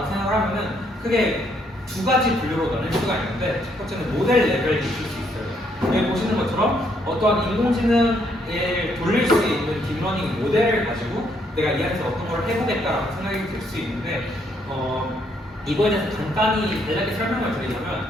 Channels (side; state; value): both; normal; correlation 0.71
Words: 생각을 하면은 크게 두 가지 분류로 나눌 수가 있는데 첫 번째는 모델 레벨이 있을 수 있어요. 여기 보시는 것처럼 어떠한 인공지능을 돌릴 수 있는 딥러닝 모델을 가지고 내가 이 안에서 어떤 걸 해보겠다라고 생각이 들 수 있는데 이거에 대해서 간단히 간략히 설명을